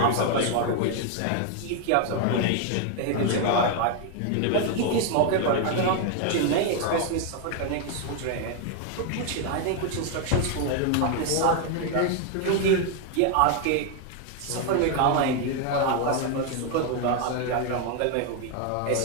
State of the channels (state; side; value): different; both; correlation 0.01